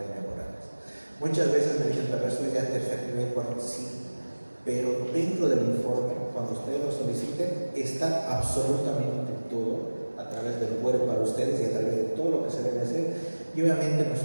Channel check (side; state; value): both; inverted; correlation -1.00